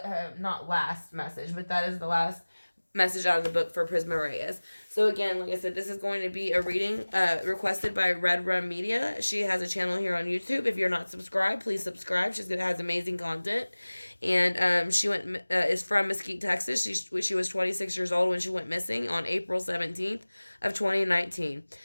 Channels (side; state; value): both; inverted; correlation -1.00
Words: Not last message, but that is the last message out of the book for Prisma Reyes. So again, like I said, this is going to be a reading requested by Red Rum Media. She has a channel here on YouTube. If you're not subscribed, please subscribe. She has amazing content. And she is from Mesquite, Texas. She was 26 years old when she went missing on April 17th of 2019.